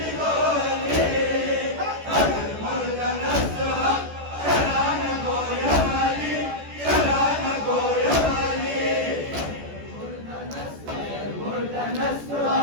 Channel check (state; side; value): late; left; 14 ms